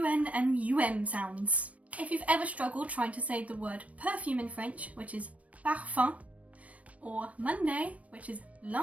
and UM sounds. If you've ever struggled trying to say the word perfume in French, which is parfum, or Monday, which is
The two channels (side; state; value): left; late; 0.066 ms